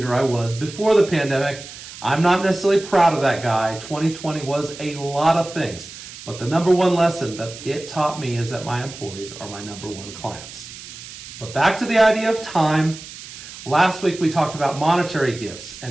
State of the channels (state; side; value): noise; right; hiss, 14 dB below the sound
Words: I was before the pandemic. I'm not necessarily proud of that guy. 2020 was a lot of things, but the number one lesson that it taught me is that my employees are my number one clients. But back to the idea of time. Last week we talked about monetary gifts